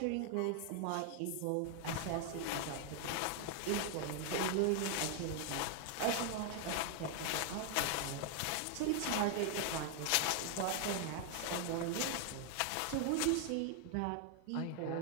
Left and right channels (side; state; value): both; different; correlation 0.00